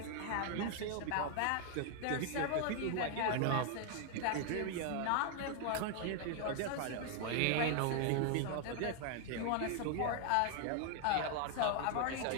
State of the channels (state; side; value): different; both; correlation 0.00